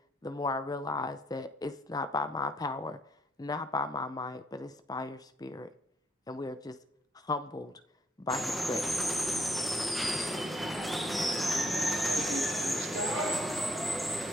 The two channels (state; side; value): normal; both; correlation 0.70